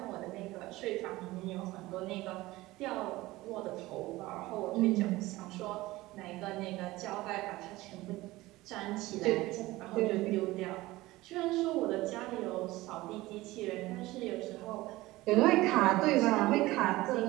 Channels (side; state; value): left; quieter; 18.8 dB